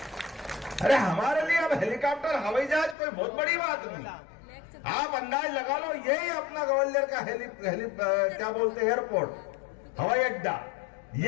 अरे हमारे लिए अब हेलीकॉप्टर, हवाई जहाज कोई बहुत बड़ी बात नहीं। आप अंदाज लगा लो, यही अपना ग्वालियर का क्या बोलते, एयरपोर्ट, हवाई अड्डा,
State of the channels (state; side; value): drops out; right; at 3.0 s